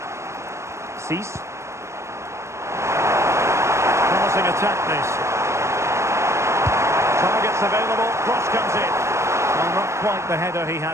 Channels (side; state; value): left; late; 0.13 ms